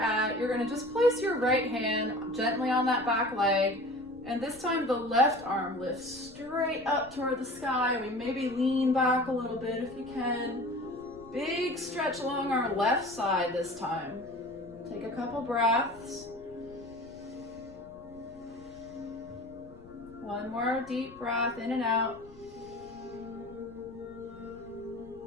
You're gonna just place your right hand gently on that back leg. And this time the left arm lifts straight up toward the sky. We maybe lean back a little bit if you can. Big stretch along our left side this time. Take a couple breaths. One more deep breath in and out.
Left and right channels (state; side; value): noise; left; rumble, 22 dB below the sound